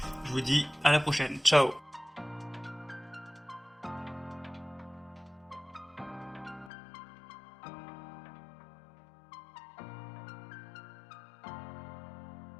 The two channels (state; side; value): drops out; right; at 6.7 s